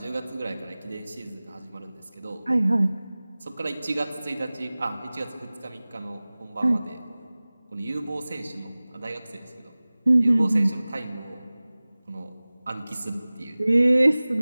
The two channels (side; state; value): both; inverted; correlation -0.99